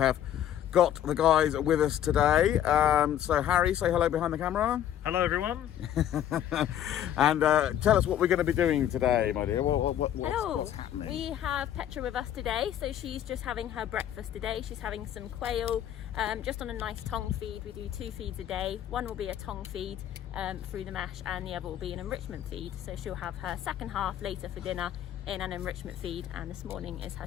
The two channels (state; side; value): quieter; right; 10.9 dB